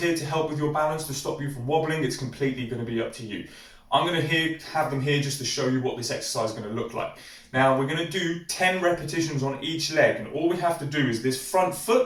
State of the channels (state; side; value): identical; both; correlation 1.00